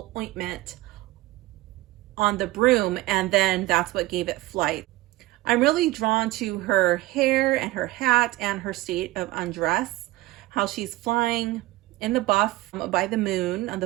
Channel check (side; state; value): left; quieter; 18.1 dB